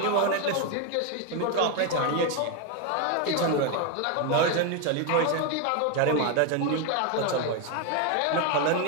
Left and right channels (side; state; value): both; different; correlation 0.02